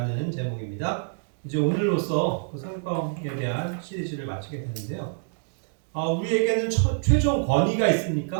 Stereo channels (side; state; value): left; silent; digital silence